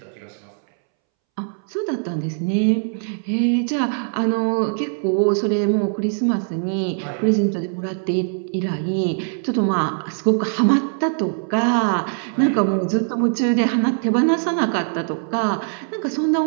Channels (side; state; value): left; silent; 65 dB below the other